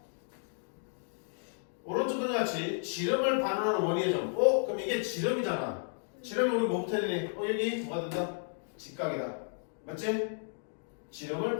오른쪽과 같이 지름을 반환하는 원위의 점. 그럼 이게 지름이잖아. 지름이 우리 뭐부터 해야 되니? 여기 뭐가 된다? 직각이다. 맞지? 지름을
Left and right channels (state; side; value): silent; right; digital silence